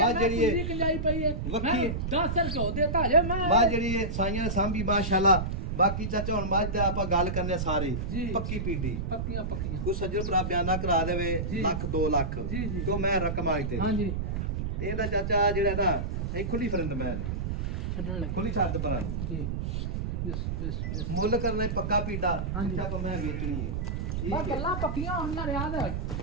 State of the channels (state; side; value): noise; right; rumble, 2 dB below the sound